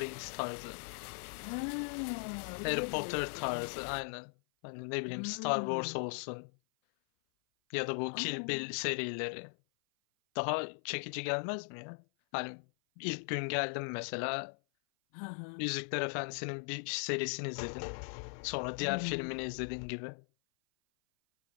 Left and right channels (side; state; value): right; silent; 52 dB below the other